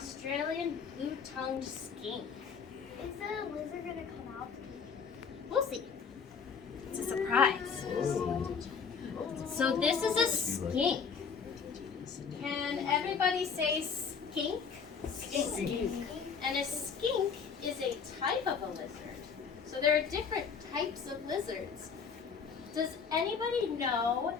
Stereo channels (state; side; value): quieter; right; 6.1 dB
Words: blue-tongued skink. Is the lizard gonna come out? We'll see. It's a surprise. So this is a skink. Can everybody say skink? Skink. And a skink is a type of a lizard. So there are different types of lizards. Does anybody know